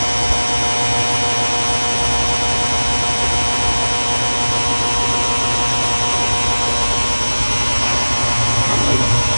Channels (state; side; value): inverted; both; correlation -1.00